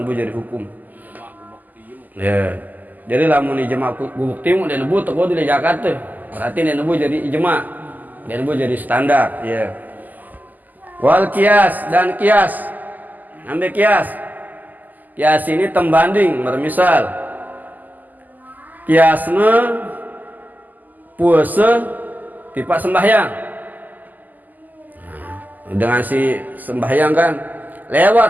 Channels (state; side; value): late; left; 0.083 ms